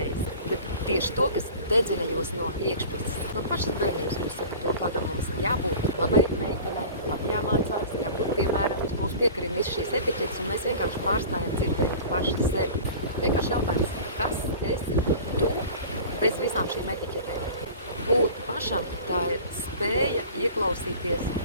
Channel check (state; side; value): inverted; both; correlation -0.39